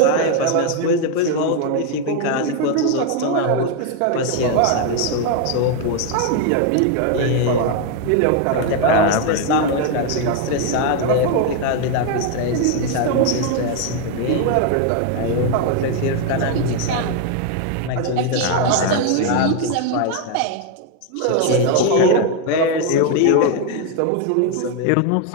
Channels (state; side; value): different; both; correlation 0.01